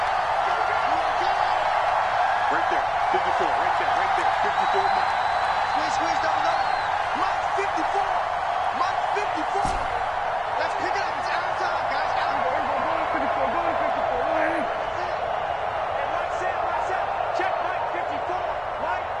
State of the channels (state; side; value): identical; both; correlation 1.00